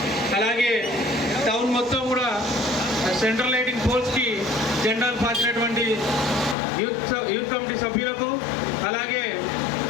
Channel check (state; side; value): drops out; right; at 6.6 s